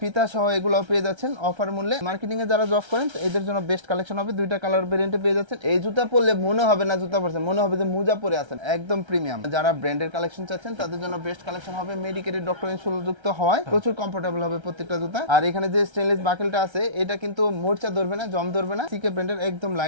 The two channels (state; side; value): late; left; 1.3 ms